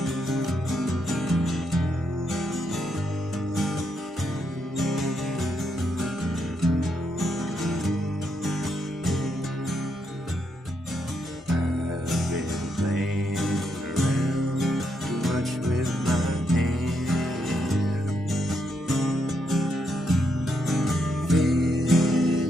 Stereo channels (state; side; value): normal; both; correlation 0.79